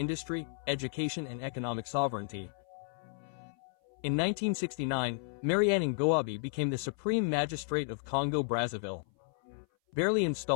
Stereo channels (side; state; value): right; silent; 56 dB below the other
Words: education and economic sovereignty. In 1969, Mariane Ngouabi became the Supreme Magistrate of Congo-Brazzaville. Barely